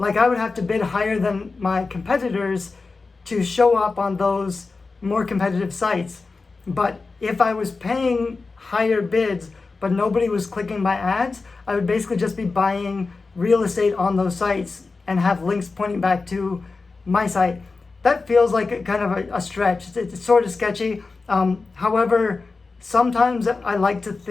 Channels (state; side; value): quieter; right; 4.0 dB